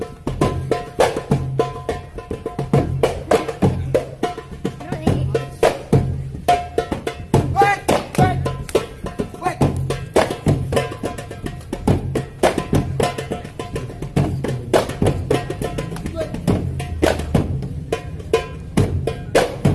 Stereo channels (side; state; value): both; identical; correlation 1.00